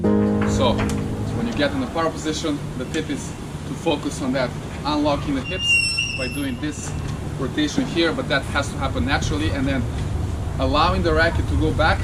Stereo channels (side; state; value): both; identical; correlation 1.00